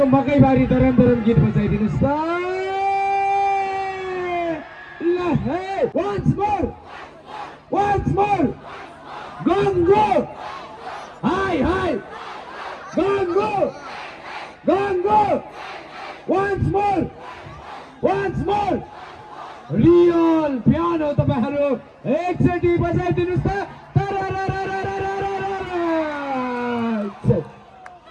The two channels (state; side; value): identical; both; correlation 1.00